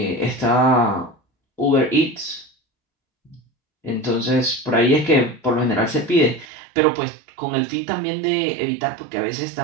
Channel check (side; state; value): left; drops out; at 6.5 s